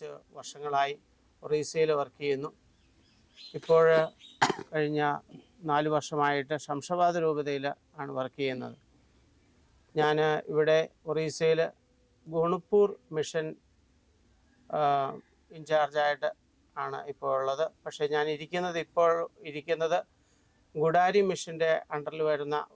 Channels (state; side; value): identical; both; correlation 1.00